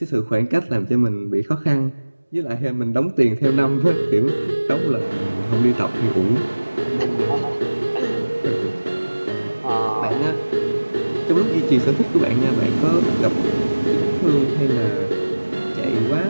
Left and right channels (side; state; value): both; inverted; correlation -1.00